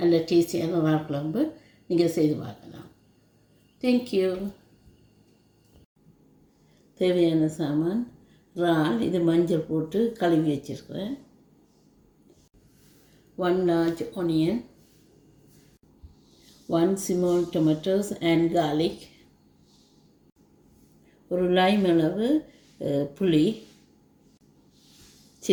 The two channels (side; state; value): both; identical; correlation 1.00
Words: டேஸ்டியான ரா குழம்பு நீங்கள் செய்து பார்க்கலாம். தேங்க்யூ. தேவையான சாமான் இறால், இது மஞ்சள் போட்டு கழுவி வச்சுருக்கிறேன். 1 large onion, 1 small tomatoes and garlic, ஒரு lime அளவு புளி,